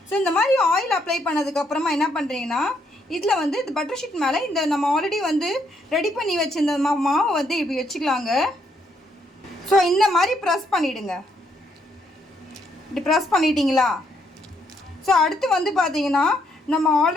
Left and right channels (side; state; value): both; normal; correlation 0.73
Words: ஸோ இந்த மாதிரி ஆயில் அப்ளை பண்ணதுக்கப்புறமா என்ன பண்ணுறீங்கன்னா இதில் வந்து இந்த பட்டர் ஷீட் மேலே இந்த நம்ம ஆல்ரெடி வந்து ரெடி பண்ணி வச்சுருந்த மாவை வந்து இப்படி வச்சுக்கலாங்க. ஸோ இந்த மாதிரி ப்ரெஸ் பண்ணிவிடுங்க. இப்படி ப்ரெஸ் பண்ணிட்டீங்களா? ஸோ அடுத்து வந்து பார்த்தீங்கன்னா நம்ம